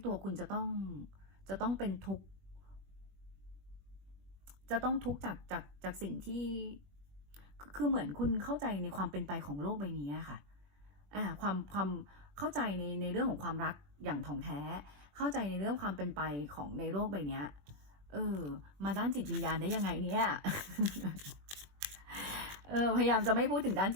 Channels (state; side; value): late; left; 21 ms